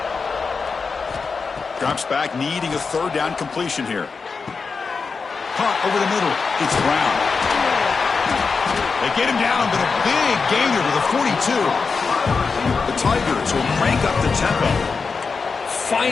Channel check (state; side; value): quieter; right; 4.9 dB